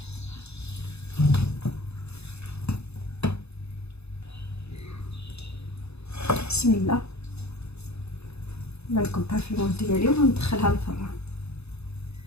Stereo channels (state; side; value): late; right; 0.80 ms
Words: بسم الله. نكبها في الماء ديالي وندخلها للفران